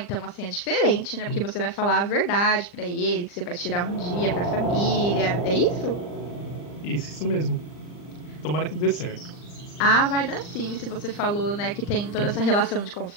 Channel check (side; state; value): right; late; 39 ms